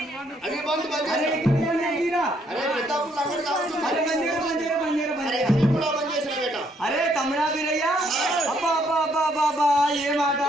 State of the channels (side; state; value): both; normal; correlation 0.70